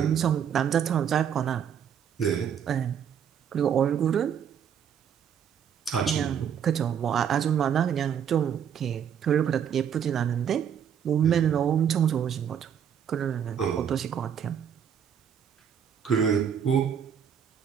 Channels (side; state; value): left; quieter; 8.3 dB